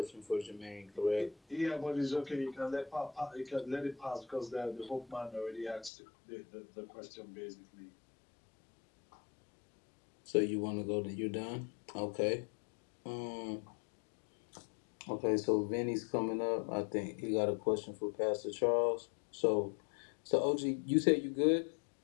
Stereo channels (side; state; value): right; drops out; at 5.9 s